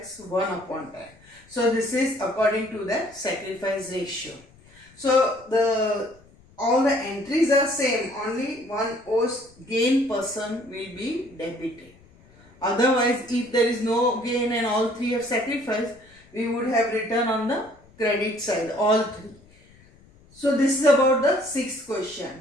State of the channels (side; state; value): left; noise; rumble, 27 dB below the sound